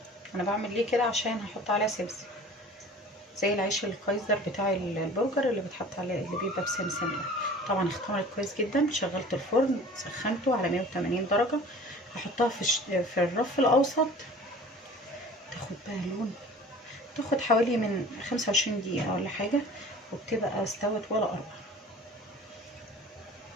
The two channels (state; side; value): normal; both; correlation 0.44